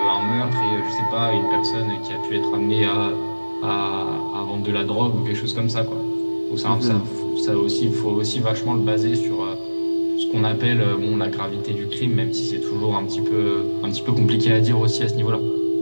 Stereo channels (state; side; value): inverted; both; correlation -1.00